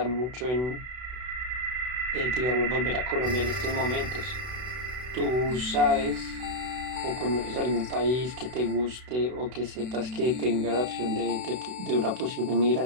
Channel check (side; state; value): left; late; 32 ms